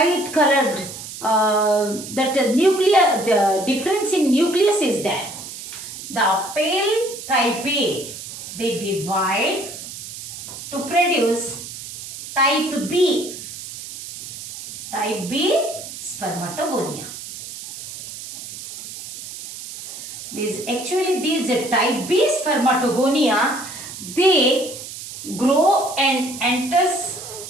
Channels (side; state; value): right; noise; hiss, 11 dB below the sound